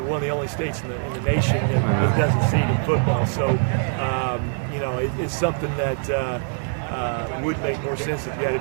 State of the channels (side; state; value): left; silent; 63 dB below the other